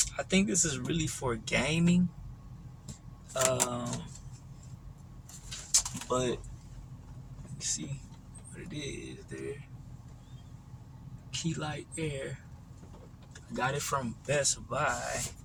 I think this is really for gaming. But you see what it is there. Key Light Air. I got it from Best Buy,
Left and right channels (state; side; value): identical; both; correlation 1.00